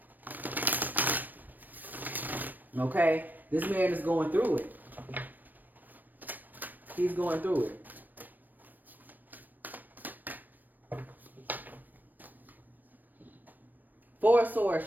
Okay? This man is going through it. He's going through it. Four of Swords,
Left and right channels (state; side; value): late; left; 0.089 ms